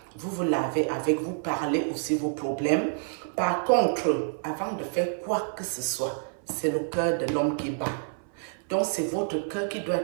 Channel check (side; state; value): left; silent; 58 dB below the other